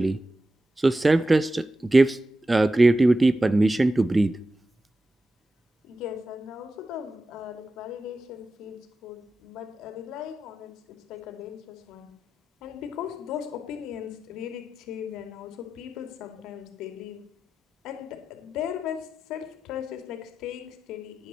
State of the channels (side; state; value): both; normal; correlation 0.93